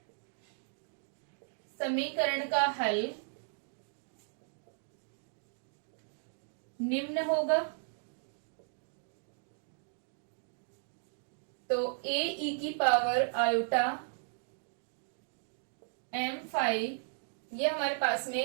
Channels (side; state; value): left; silent; digital silence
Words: समीकरण का हल निम्न होगा। तो ए ई की पावर आयोटा एम फाई, ये हमारे पास में